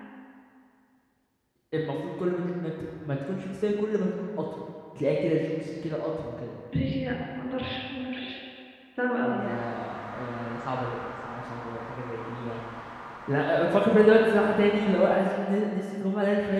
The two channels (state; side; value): identical; both; correlation 1.00